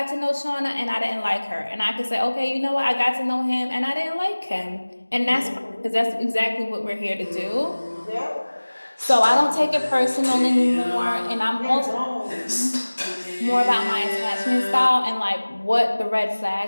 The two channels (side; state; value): both; inverted; correlation -1.00